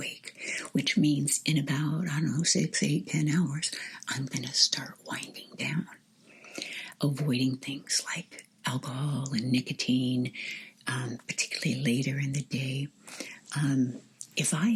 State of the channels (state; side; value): identical; both; correlation 1.00